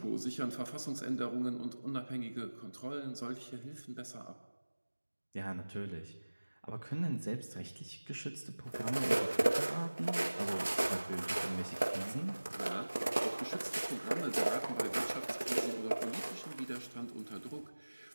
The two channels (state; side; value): inverted; both; correlation -1.00